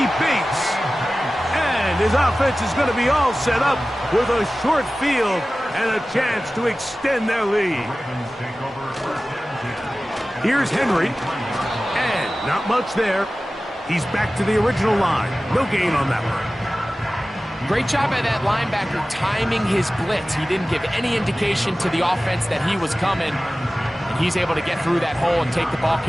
Bates. And his offense is going to be all set up with a short field and a chance to extend their lead. Here's Henry. And not much there. He's back to the original line. No gain on that one. Great job by that linebacker timing his blitz. He didn't give any indication to the offense that he was coming. And he's able to get through that hole and take the ball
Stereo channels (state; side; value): normal; both; correlation 0.96